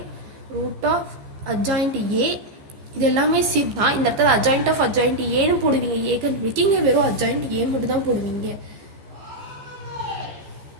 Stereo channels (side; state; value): left; late; 14 ms